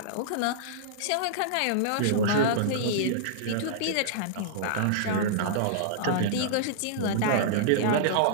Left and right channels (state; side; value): different; both; correlation -0.02